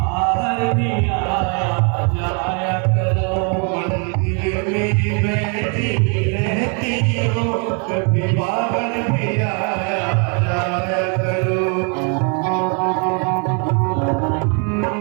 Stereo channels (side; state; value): left; quieter; 37.7 dB